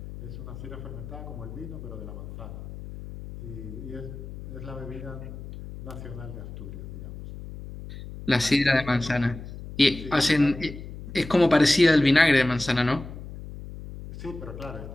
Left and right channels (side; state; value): left; noise; hum, 12 dB below the sound